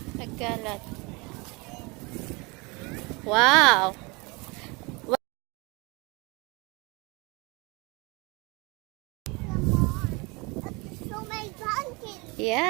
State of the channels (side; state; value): left; quieter; 27.3 dB